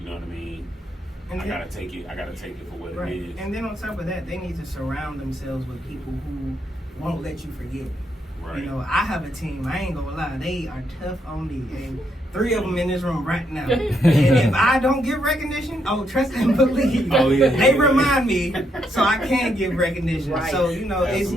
You know what I mean? And I gotta take it for what it is. And then on top of that, they need to surround themselves with people who won't let you forget. Right. You know, I have a team. I ain't gonna lie, they are tough on me, and 3 of them in this room right now. And if I don't give recognition, trust and believe. They remind me, so I can give recognition. Right. So you know,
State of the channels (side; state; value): both; normal; correlation 0.77